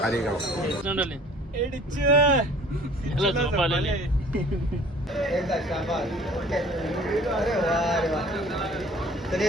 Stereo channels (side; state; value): both; normal; correlation 0.50